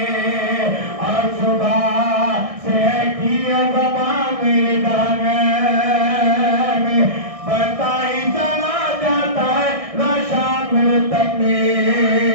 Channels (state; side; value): late; left; 1.6 ms